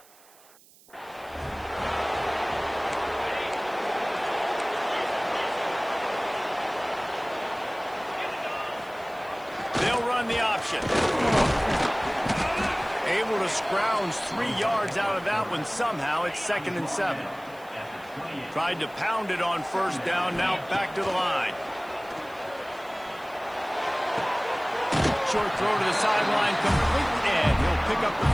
They'll run the option. Able to scrounge 3 yards out of that one somehow. It's 2nd and 7. Tried to pound it on first down. Now back to the line. Short throw to the sideline complete, and he'll pick up the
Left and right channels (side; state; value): right; noise; hiss, 26 dB below the sound